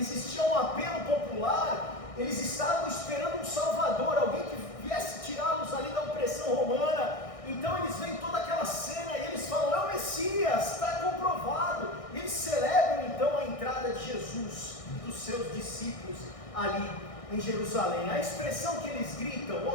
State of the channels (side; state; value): right; late; 1.6 ms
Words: um apelo popular, eles estavam esperando um Salvador, alguém que viesse tirá-los ali da opressão romana. Então eles veem toda aquela cena e eles falam: é o Messias, está comprovado. E eles celebram então a entrada de Jesus e dos seus discípulos ali em Jerusalém. A expressão que eles gritam,